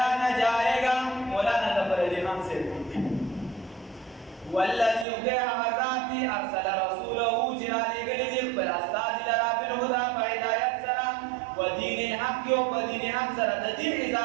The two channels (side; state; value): left; drops out; at 5.1 s